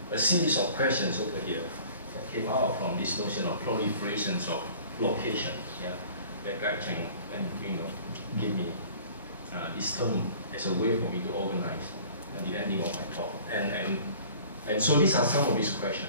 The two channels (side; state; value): both; inverted; correlation -0.47